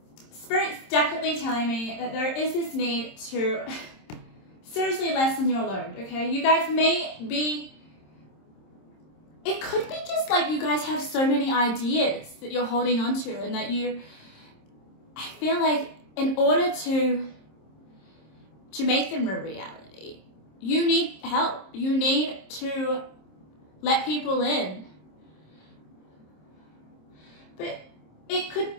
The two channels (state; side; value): late; right; 26 ms